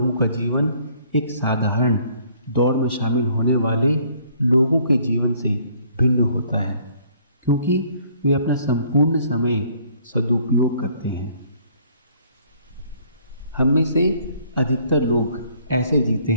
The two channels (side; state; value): both; inverted; correlation -0.61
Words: का जीवन एक साधारण दौड़ में शामिल होने वाले लोगों के जीवन से भिन्न होता है, क्योंकि वे अपना संपूर्ण समय सदुपयोग करते हैं। हम में से अधिकतर लोग ऐसे जीते